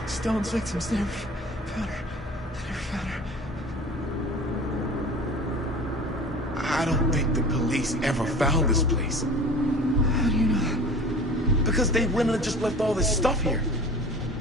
Stone's victims. They never found her. They never found her. I don't think the police ever found this place. How do you know that? Because they went and just left all this stuff here.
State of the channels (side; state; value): both; normal; correlation 0.40